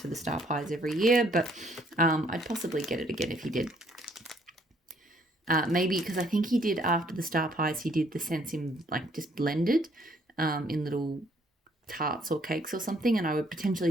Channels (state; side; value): normal; both; correlation 0.65